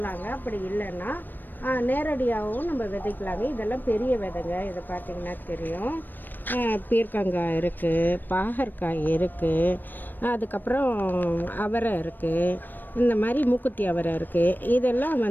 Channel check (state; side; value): late; right; 0.091 ms